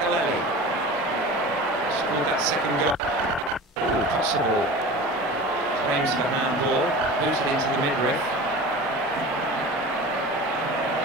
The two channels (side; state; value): both; normal; correlation 0.35